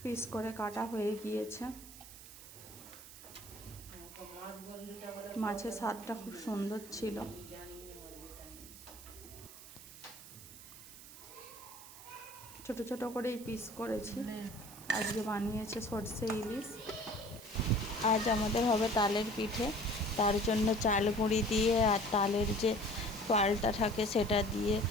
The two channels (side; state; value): right; noise; hiss, 16 dB below the sound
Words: পিস করে কাটা হয়ে গিয়েছে। মাছের স্বাদটা খুব সুন্দর ছিল। ছোট ছোট করেই পিস করেছি। আজকে বানিয়েছে সরষে ইলিশ। আজ আমাদের হবে তালের পিঠে, তার জন্য চাল গুঁড়ি দিয়ে আর তালের যে পালটা থাকে সেটা দিয়ে